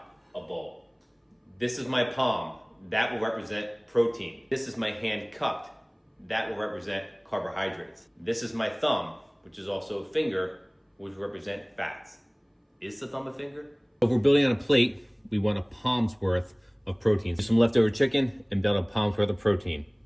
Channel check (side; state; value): both; identical; correlation 1.00